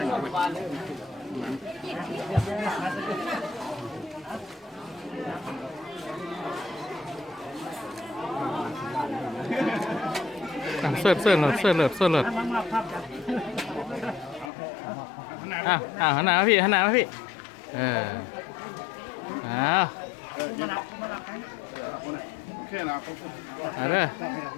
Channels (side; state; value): right; drops out; at 14.5 s